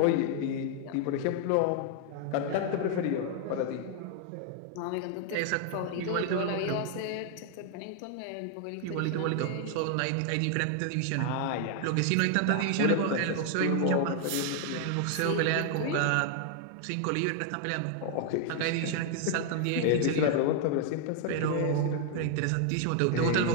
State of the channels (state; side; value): different; both; correlation 0.00